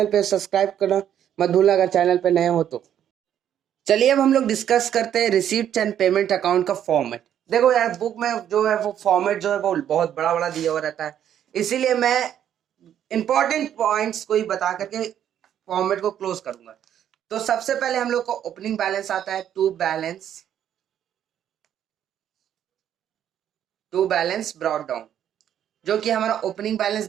पे सब्सक्राइब करना मत भूलना अगर चैनल पे नए हो तो। चलिए अब हम लोग डिस्कस करते हैं रिसीप्ट एंड पेमेंट अकाउंट का फॉर्मेट। देखो यार, बुक में जो है वो फॉर्मेट जो है वो बहुत बड़ा बड़ा दिया हुआ रहता है, इसीलिए मैं इंपॉर्टेंट पॉइंट्स को ही बता करके फॉर्मेट को क्लोज करूंगा। तो सबसे पहले हम लोग को ओपनिंग बैलेंस आता है, टू बैलेंस ब्रॉट डाउन, जो कि हमारा ओपनिंग बैलेंस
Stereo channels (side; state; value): left; quieter; 10.1 dB